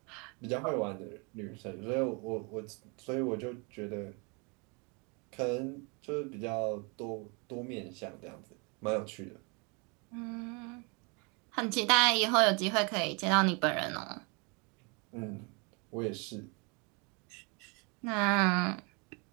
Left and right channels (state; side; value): quieter; left; 31.9 dB